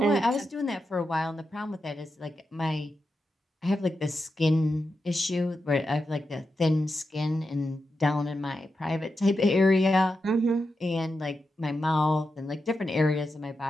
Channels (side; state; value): both; normal; correlation 0.88